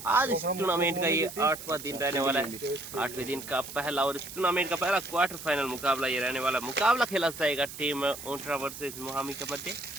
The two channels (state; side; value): noise; right; hiss, 12 dB below the sound